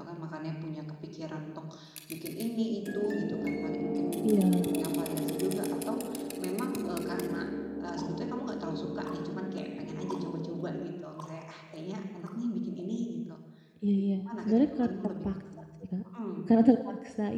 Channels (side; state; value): both; identical; correlation 1.00